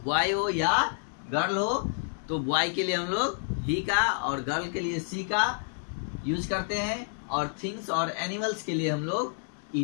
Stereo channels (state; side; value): silent; right; digital silence